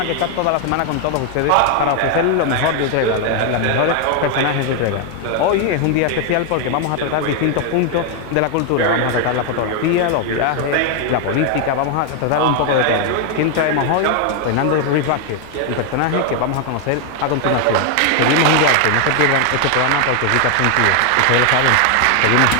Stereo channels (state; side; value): different; both; correlation 0.00